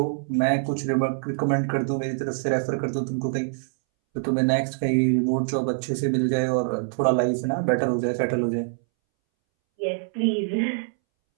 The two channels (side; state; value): left; silent; 62 dB below the other